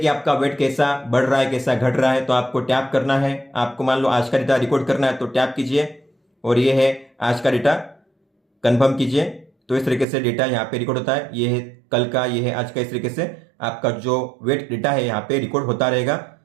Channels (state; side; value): drops out; left; at 10.1 s